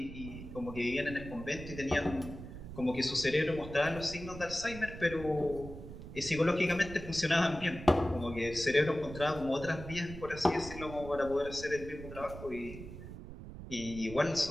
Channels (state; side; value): noise; right; rumble, 12 dB below the sound